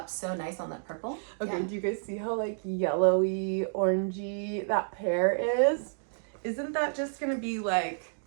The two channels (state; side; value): silent; left; digital silence